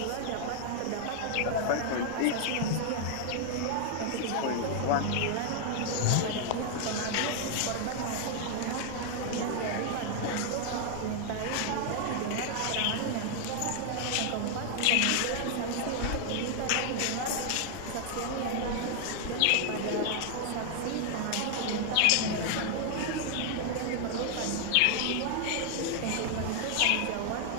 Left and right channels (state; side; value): different; both; correlation 0.00